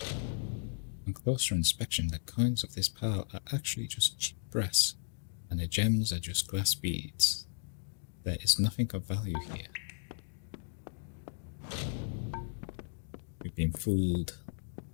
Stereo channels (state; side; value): silent; right; digital silence